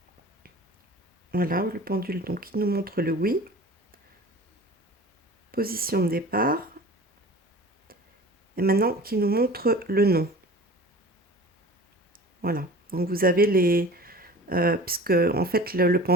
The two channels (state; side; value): normal; both; correlation 0.40